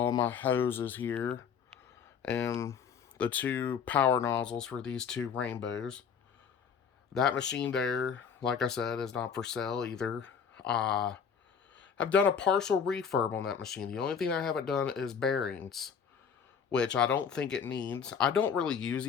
my hoses here and the two power nozzles for these two rainbows. That machine there, like I said, is not for sale either. I've done a partial refurb on that machine. The only thing I haven't done is bearings, which I don't think it needs. I don't really use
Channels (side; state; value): right; quieter; 6.9 dB